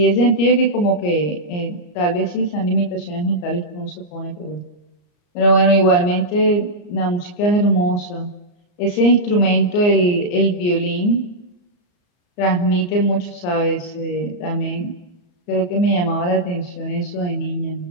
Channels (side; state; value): right; late; 34 ms